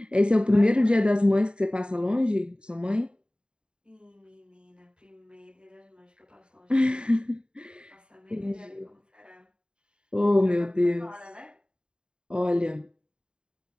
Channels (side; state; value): left; late; 0.050 ms